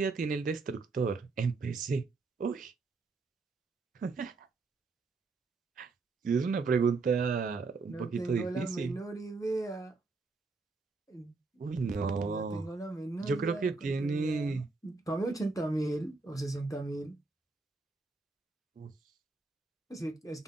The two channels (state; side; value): quieter; left; 4.0 dB